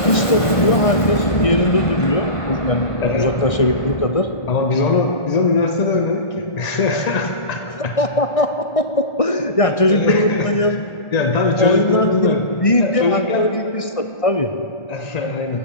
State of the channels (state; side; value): late; right; 1.5 ms